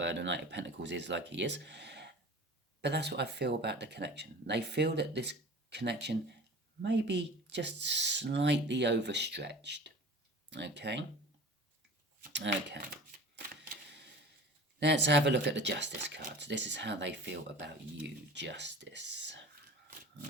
Pentacles is like he is, but that's what I feel about the connection. They feel that this connection may be just slightly overstretched. Okay. Let's have a look at the Justice cards. This is how they feel about you, Justice.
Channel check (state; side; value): normal; both; correlation 0.40